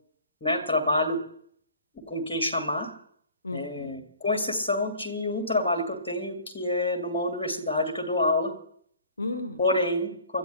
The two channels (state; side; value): inverted; both; correlation -0.48